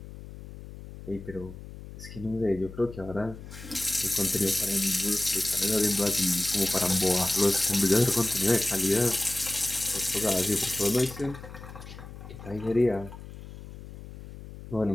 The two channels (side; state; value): left; noise; hum, 14 dB below the sound